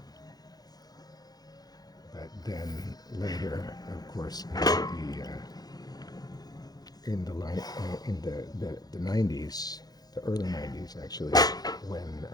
But then later, of course, in the 90s, the early 90s actually, when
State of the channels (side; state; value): right; late; 0.19 ms